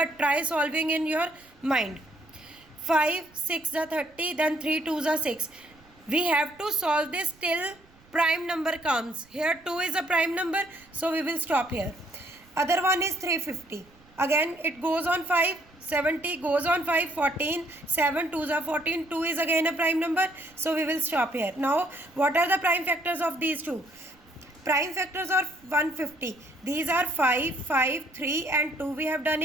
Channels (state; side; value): noise; right; rumble, 28 dB below the sound